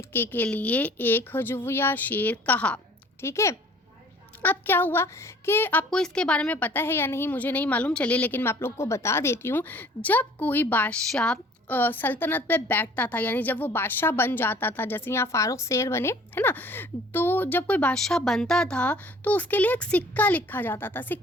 के लिए एक हजविया शेर कहा। ठीक है। अब क्या हुआ कि आपको इसके बारे में पता है या नहीं मुझे नहीं मालूम, चलिए लेकिन मैं आप लोग को बता देती हूँ। जब कोई बादशाह सल्तनत पे बैठता था, यानी जब वो बादशाह बन जाता था, जैसे यहाँ फारूक शेर बने, है ना, तो जब कोई बादशाह बनता था तो उसके लिए एक सिक्का लिखा जाता था।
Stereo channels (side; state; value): both; normal; correlation 0.52